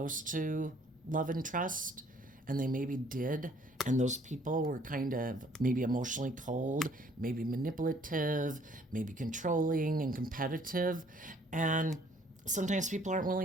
to love and trust, and they maybe did, and those people were kind of maybe emotionally cold, maybe manipulative, maybe controlling and competitive. And sometimes people aren't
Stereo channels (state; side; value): normal; both; correlation 0.60